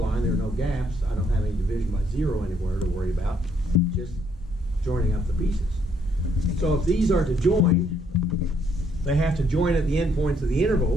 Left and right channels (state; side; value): normal; both; correlation 0.70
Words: There are no gaps. I don't have any division by 0 anywhere to worry about, just joining up the pieces. So if these are to join, they have to join at the endpoints of the